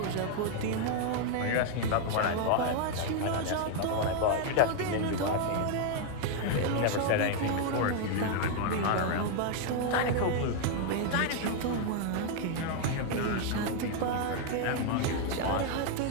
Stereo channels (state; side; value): different; both; correlation 0.00